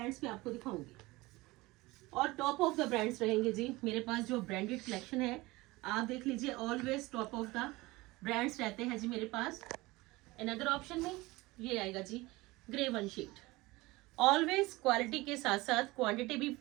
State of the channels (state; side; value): quieter; left; 21.2 dB